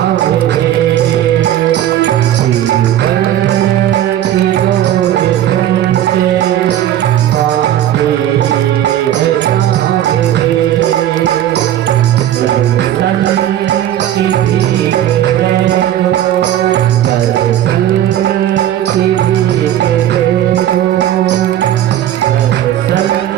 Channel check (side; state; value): left; quieter; 11.8 dB